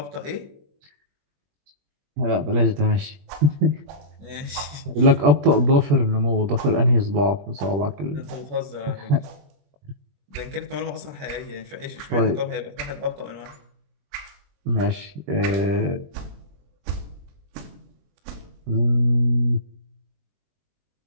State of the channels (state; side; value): late; left; 21 ms